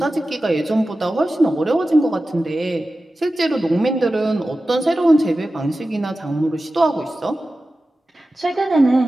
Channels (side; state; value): both; normal; correlation 0.94